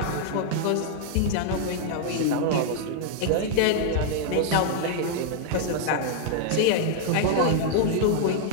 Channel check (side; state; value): both; different; correlation -0.01